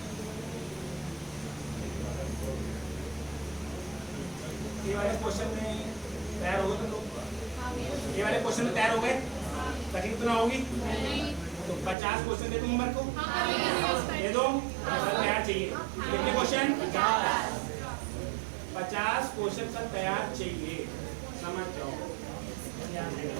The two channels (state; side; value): drops out; left; at 12.0 s